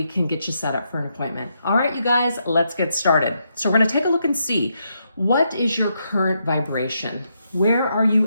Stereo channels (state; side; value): inverted; both; correlation -0.80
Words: can get you set up for an appointment. All right, you guys, let's get started. So we're gonna take a look and see, what is your current vibration? Where are